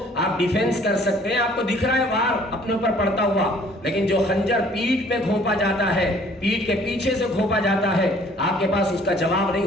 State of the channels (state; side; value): normal; both; correlation 0.57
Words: آپ ڈیفینس کر سکتے ہیں، آپ کو دکھ رہا ہے وار اپنے اوپر پڑتا ہوا. لیکن جو خنجر پیٹھ پہ گھونپا جاتا ہے، پیٹھ کے پیچھے سے گھونپا جاتا ہے، آپ کے پاس اس کا جواب